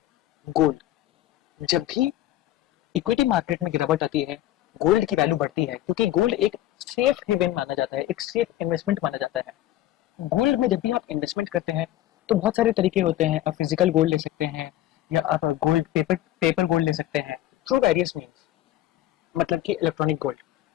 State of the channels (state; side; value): quieter; right; 13.9 dB